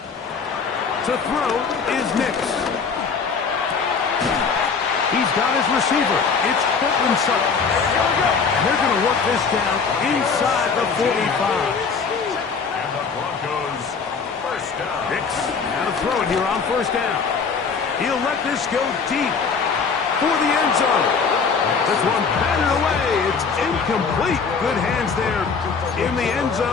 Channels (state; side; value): quieter; right; 5.4 dB